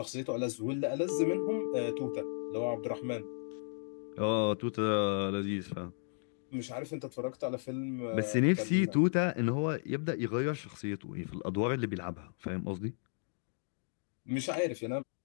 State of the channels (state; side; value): silent; right; digital silence